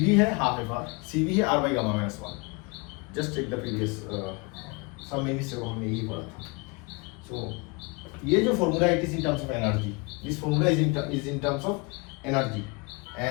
है हाफ FR, CV है R by gamma minus 1। Just take the previous some minutes ago हमने यही पढ़ा था। सो ये जो formula it is in terms of energy, this formula is in terms of energy,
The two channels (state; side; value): quieter; right; 28.8 dB